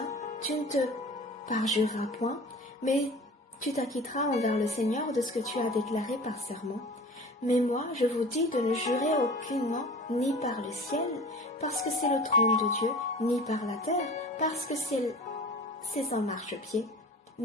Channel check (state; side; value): normal; both; correlation 0.40